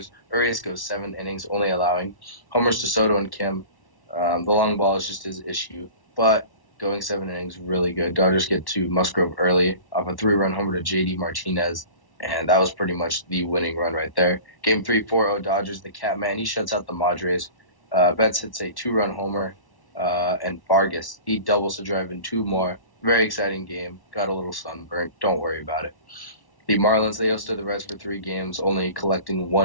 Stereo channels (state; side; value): late; right; 1.1 ms